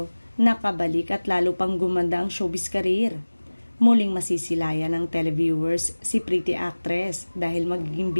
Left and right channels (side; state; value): both; inverted; correlation -1.00